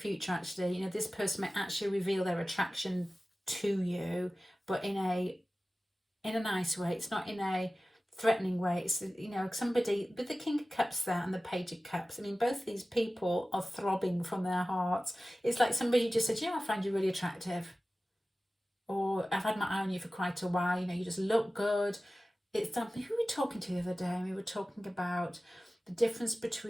actually, this person might actually reveal their attraction to you, but in a nice way. It's not in a threatening way. It's, somebody with the King of Cups there and the Page of Cups. I mean, both these people are throbbing from their hearts. It's like somebody just said, I find you really attractive. Or I've had my eye on you for quite a while. You just look good. It's something, who were we talking to the other day? We were talking about the difference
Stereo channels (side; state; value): both; normal; correlation 0.96